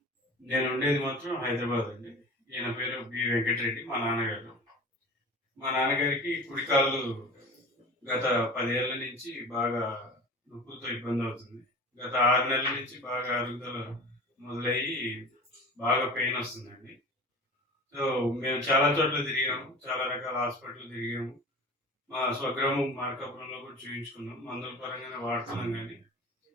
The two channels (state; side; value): normal; both; correlation 0.37